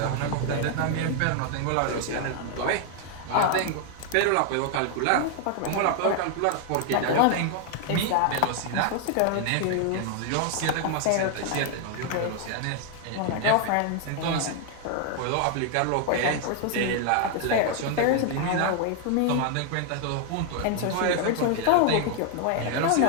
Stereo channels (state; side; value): different; both; correlation 0.00